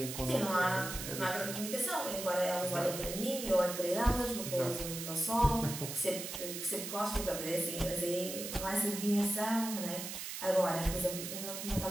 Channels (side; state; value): right; noise; hiss, 6 dB below the sound